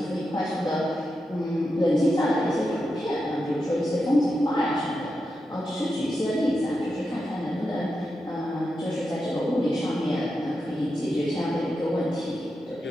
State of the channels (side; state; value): both; normal; correlation 0.88